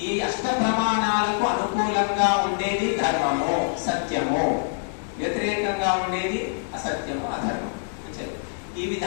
ఈ అష్ట ప్రమాణాలకు అనుకూలంగా ఉండేది ధర్మము, సత్యము. వ్యతిరేకంగా ఉండేది అసత్యము, అధర్మం. ఈ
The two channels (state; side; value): silent; right; digital silence